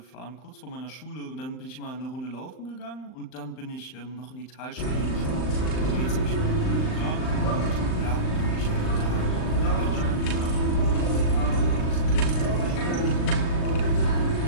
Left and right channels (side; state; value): right; late; 39 ms